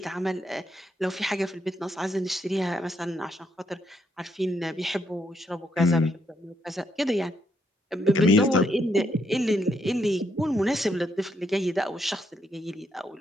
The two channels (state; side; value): normal; both; correlation 0.76